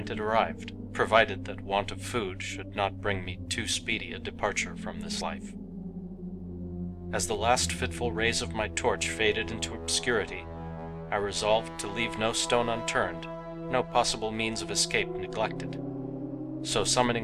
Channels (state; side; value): identical; both; correlation 1.00